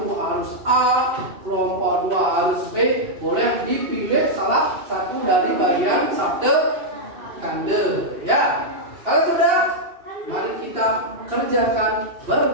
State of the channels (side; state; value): left; late; 2.6 ms